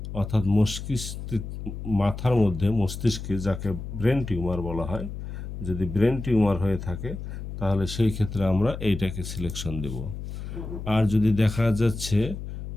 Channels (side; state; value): left; noise; hum, 8 dB below the sound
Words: অর্থাৎ মাথার মধ্যে মস্তিষ্কে, যাকে ব্রেন টিউমার বলা হয়, যদি ব্রেন টিউমার হয়ে থাকে তাহলে সেই ক্ষেত্রে আমরা এইটাকে সিলেকশন দেব। আর যদি দেখা যাচ্ছে